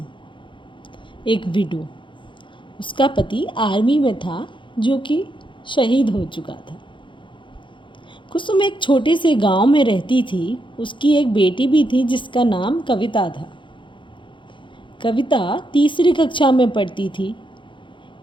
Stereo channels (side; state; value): right; late; 0.24 ms